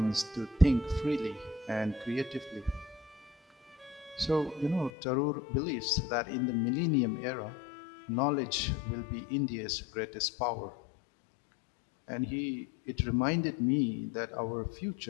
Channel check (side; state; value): right; drops out; at 4.9 s